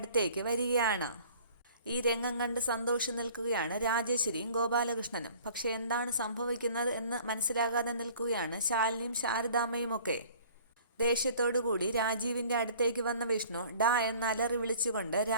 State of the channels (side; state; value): both; inverted; correlation -0.51